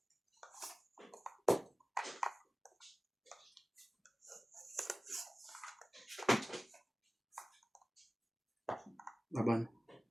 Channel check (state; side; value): normal; both; correlation 0.97